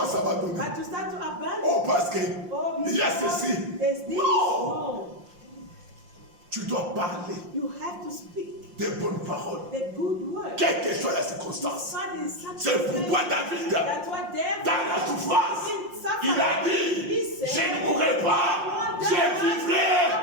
à abandonner. But you start to abandon. Oh, parce que Oh, il y a because ceci. there's this. Non. No. Tu dois parler You have to speak des bonnes paroles. the good word. Quelle que soit la circonstance. God is such C'est pourquoi David, That's what David dans la souffrance, il a dit, je ne mourrai pas, je vivrai,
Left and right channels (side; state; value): left; late; 5.7 ms